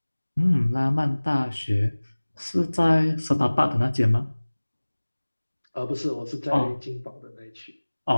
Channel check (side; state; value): both; inverted; correlation -1.00